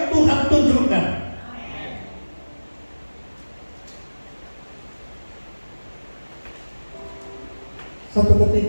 Tuhan tunjukkan. Satu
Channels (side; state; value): both; inverted; correlation -1.00